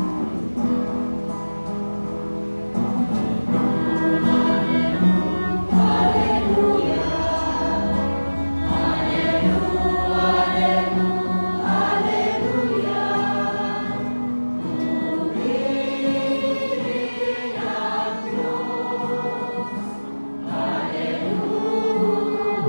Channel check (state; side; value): inverted; both; correlation -1.00